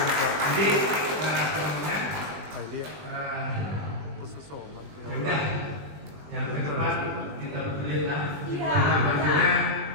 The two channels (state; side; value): late; left; 20 ms